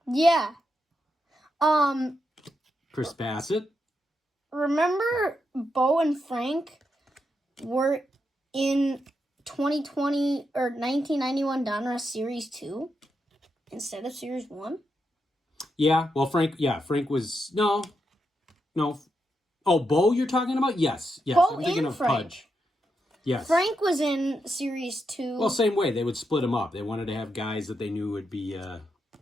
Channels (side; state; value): both; normal; correlation 0.84